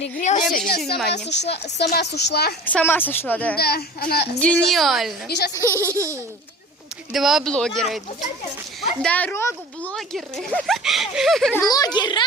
не обращай внимания. Сама сошла. Сама сошла, да? Да, она... Гениально. И сейчас... Два блогера идут. Дорогу блогеры.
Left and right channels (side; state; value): both; normal; correlation 0.41